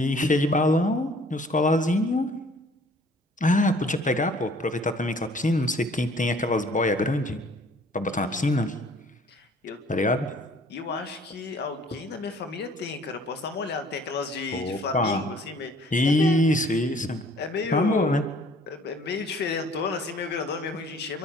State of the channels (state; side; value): normal; both; correlation 0.55